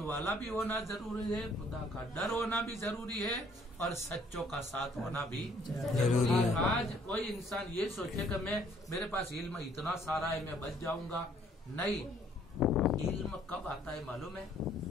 वाला भी होना जरूरी है, खुदा का डर होना भी जरूरी है, और सच्चों का साथ होना भी जरूरी है। आज कोई इंसान ये सोचे कि मैं मेरे पास इल्म इतना सारा है मैं बच जाऊंगा, नहीं। इल्म कब आता है मालूम है?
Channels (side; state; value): both; normal; correlation 0.62